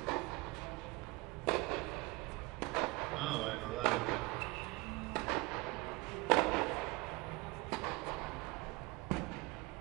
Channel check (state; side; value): quieter; left; 23.9 dB